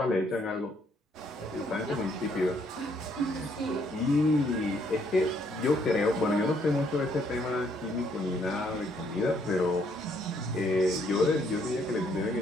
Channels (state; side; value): normal; both; correlation 0.69